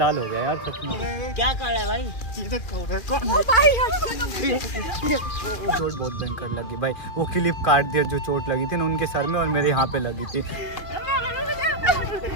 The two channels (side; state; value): right; late; 2.4 ms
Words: हो गया यार सच में। क्या कर रहा है भाई? चोट बहुत भयंकर लगी भाई, वो क्लिप काट दिया जो चोट लगी थी ना उनके सर में और मेरे यहाँ पे लगी थी।